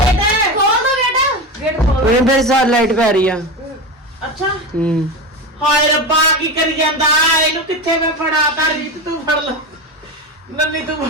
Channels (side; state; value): both; normal; correlation 0.21